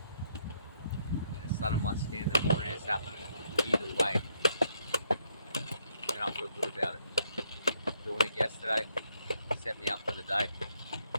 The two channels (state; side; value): inverted; both; correlation -0.72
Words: the sun on my skin in the morning is happening either way. And I feel good about it. Doing it yesterday set me up for the day.